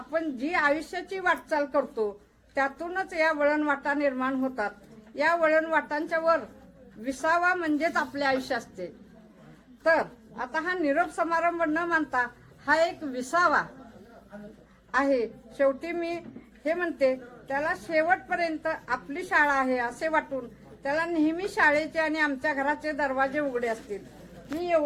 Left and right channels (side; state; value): both; identical; correlation 1.00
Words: जी आयुष्याची वाटचाल करतो त्यातूनच या वळणवाटा निर्माण होतात. या वळणवाटांच्या वर विसावा म्हणजेच आपले आयुष्य असते. तर आता हा निरोप समारंभ न मानता हा एक विसावा आहे. शेवटी मी हे म्हणते, त्याला शेवटपर्यंत आपली शाळा आहे असे वाटून त्याला नेहमी शाळेचे आणि आमच्या घराचे दरवाजे उघडे असतील. मी